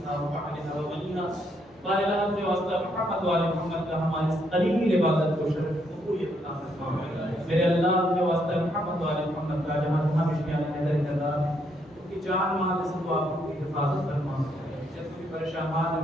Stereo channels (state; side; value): normal; both; correlation 0.74